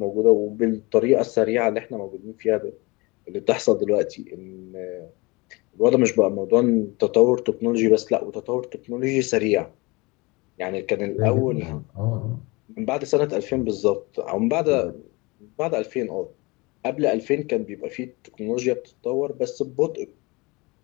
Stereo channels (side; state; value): right; quieter; 25.2 dB